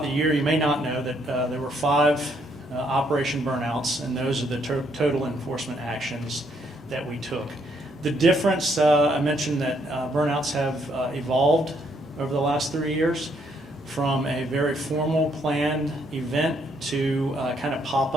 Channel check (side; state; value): both; normal; correlation 0.71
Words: the year, you may not know that there were 5 Operation Burnouts, and those are the total enforcement actions that we took. The difference, I mentioned that burnouts have evolved over the last 3 years from a very formal planned event to kind of